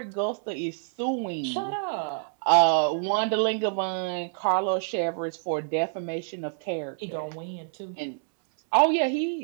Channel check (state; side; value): silent; left; 60 dB below the other